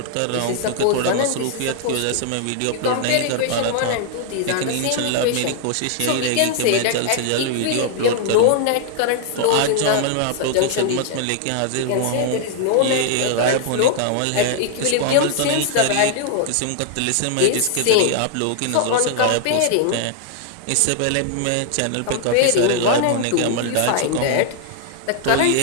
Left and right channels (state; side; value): different; both; correlation 0.00